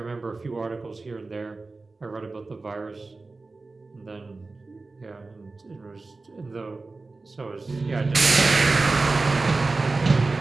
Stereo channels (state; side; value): quieter; left; 3.6 dB